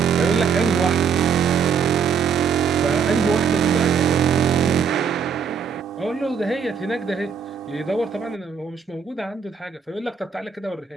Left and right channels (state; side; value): quieter; left; 6.6 dB